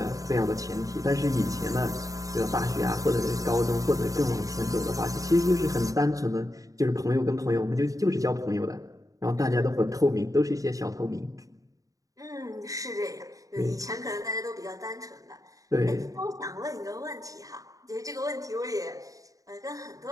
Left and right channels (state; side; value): late; left; 0.16 ms